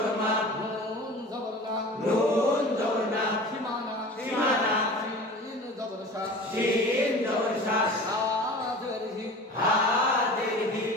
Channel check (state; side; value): normal; both; correlation 0.38